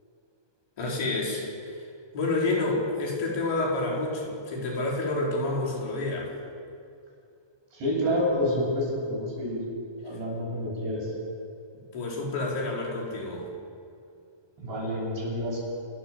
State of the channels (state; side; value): late; left; 1.2 ms